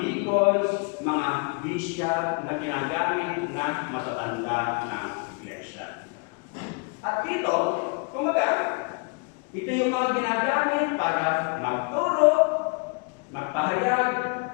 mga bishop na ginagamit na matatanda ng iglesia. At dito, kumbaga, ito yung mga ginagamit para magturo, magpahayag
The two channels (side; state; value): right; quieter; 33.3 dB